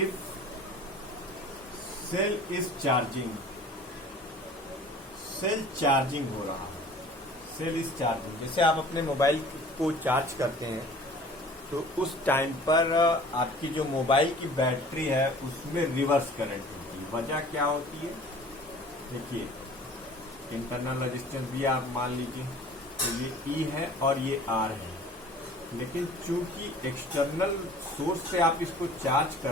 if cell is charging, cell charging हो रहा है, सेल इज चार्जिंग। जैसे आप अपने मोबाइल को चार्ज करते हैं तो उस टाइम पर आपकी जो मोबाइल की बैटरी है उसमें रिवर्स करंट होती है। वजह क्या होती है? देखिए, इंटरनल रेजिस्टेंस भी आप मान लीजिए, तो ये E है और ये R है, लेकिन चूंकि एक्सटर्नल सोर्स से आप इसको चार्ज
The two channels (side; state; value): both; normal; correlation 0.47